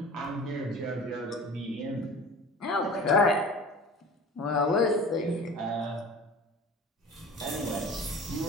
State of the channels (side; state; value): both; normal; correlation 0.39